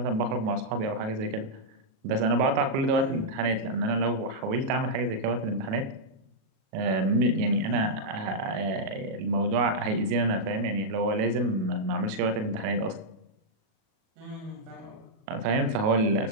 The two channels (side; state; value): left; late; 37 ms